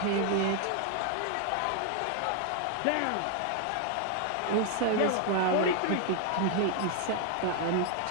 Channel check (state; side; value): different; both; correlation 0.00